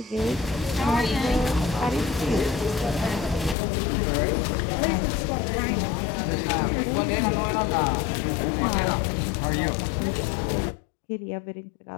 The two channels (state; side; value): drops out; right; at 3.6 s